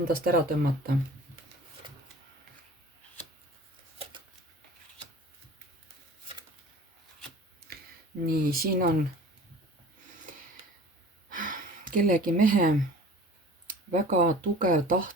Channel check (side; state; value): both; normal; correlation 0.43